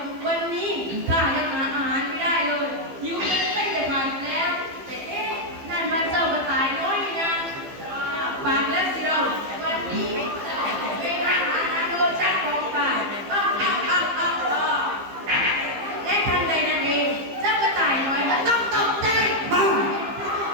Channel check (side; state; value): left; late; 15 ms